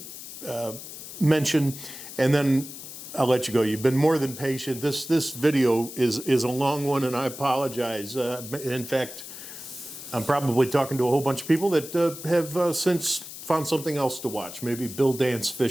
mention, and then I'll let you go. You've been more than patient. This video is a long one, and I apologize. In fact, I'm probably talking to a whole bunch of people that have since found something else to watch, maybe Bill Dance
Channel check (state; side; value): noise; left; hiss, 12 dB below the sound